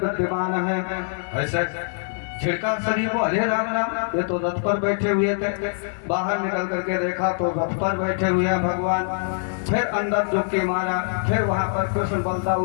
है। ऐसे छिड़का शरीर को, अरे राम राम, ये तो रथ पर बैठे हुए थे। बाहर निकल करके देखा तो रथ पर बैठे हुए हैं भगवान। फिर अंदर डुबकी मारा, फिर वहां पर कृष्ण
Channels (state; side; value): silent; right; 59 dB below the other